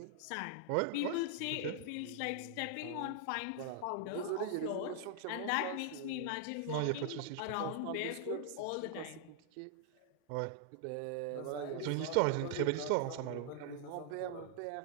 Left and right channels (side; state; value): both; different; correlation -0.01